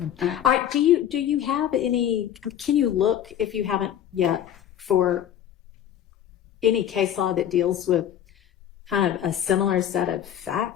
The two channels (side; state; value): right; quieter; 10.4 dB